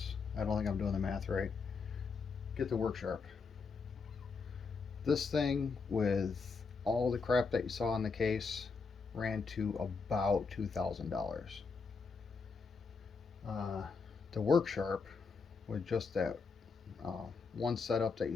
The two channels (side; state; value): right; quieter; 4.9 dB